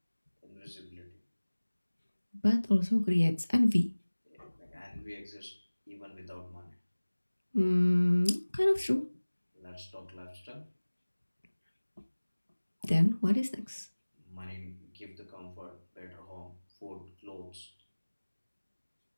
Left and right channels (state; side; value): inverted; both; correlation -1.00